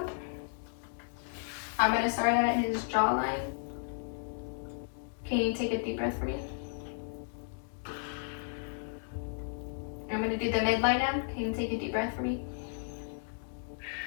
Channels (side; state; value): right; silent; digital silence